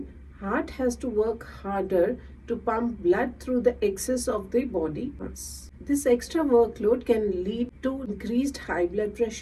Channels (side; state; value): both; identical; correlation 1.00